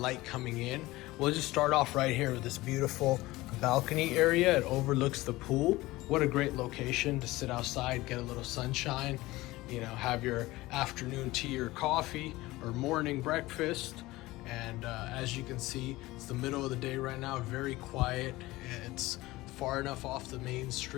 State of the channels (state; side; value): quieter; right; 19.1 dB